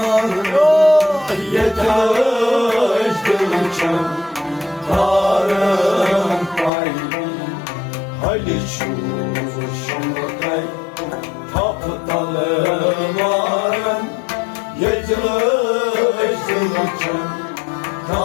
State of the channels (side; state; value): right; drops out; at 6.7 s